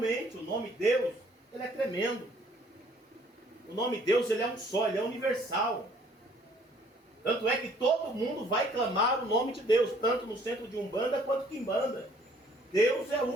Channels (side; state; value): both; normal; correlation 0.59